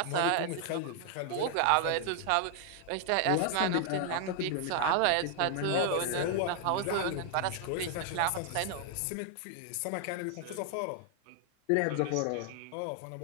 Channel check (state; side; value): different; both; correlation 0.00